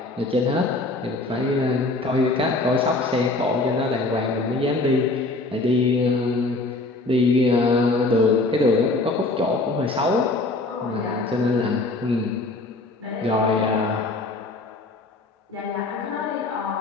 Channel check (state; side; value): quieter; right; 3.1 dB